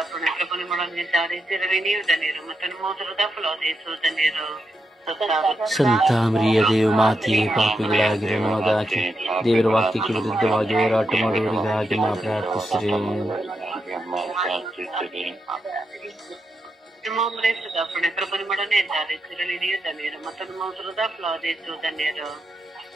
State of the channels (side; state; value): both; normal; correlation 0.85